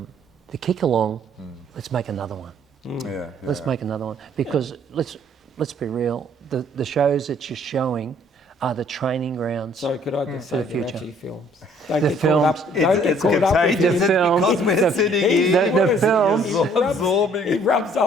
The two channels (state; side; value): normal; both; correlation 0.60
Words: kick along. Let's make another one. Let's make another one, because let's be real. The shows that you're showing are the training grounds. So could I just say the future. actually films? Don't The get films. caught up. Don't get caught up with The films. Because we're sitting here. The films. He rubs